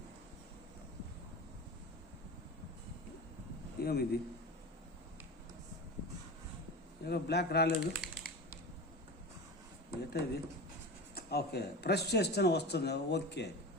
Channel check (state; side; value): normal; both; correlation 0.29